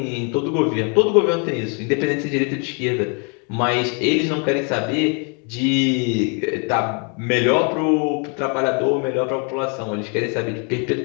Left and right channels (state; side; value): quieter; right; 36.2 dB